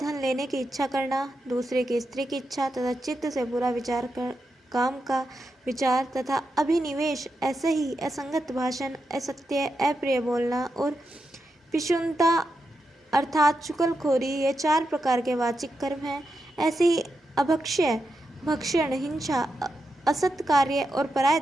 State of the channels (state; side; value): normal; both; correlation 0.87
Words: लेने की इच्छा करना, दूसरे की स्त्री की इच्छा तथा चित्त से बुरा विचार कर काम का विचार तथा अभिनिवेश, ऐसे ही असंगत भाषण, असत्य, अप्रिय बोलना और पिशुनता अर्थात चुगलखोरी, ये 4 प्रकार के वाचिक कर्म हैं। ऐसे ही अभक्ष्य, भक्षण, हिंसा, असत कार्य और पराय